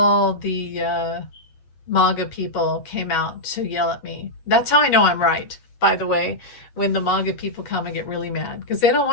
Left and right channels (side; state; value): right; late; 8.3 ms